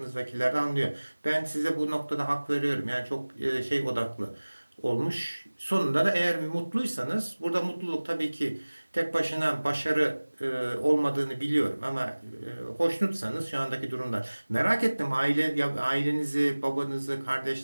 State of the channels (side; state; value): both; inverted; correlation -1.00